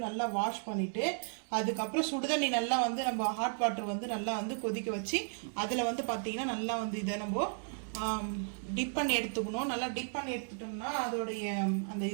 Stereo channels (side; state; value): left; silent; 55 dB below the other